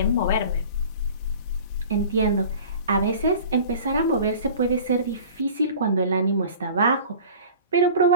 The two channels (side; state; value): both; inverted; correlation -0.41